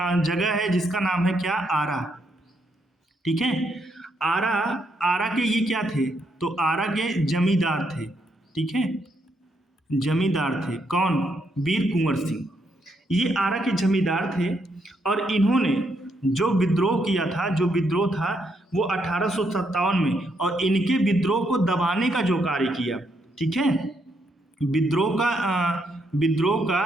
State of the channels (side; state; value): both; normal; correlation 0.77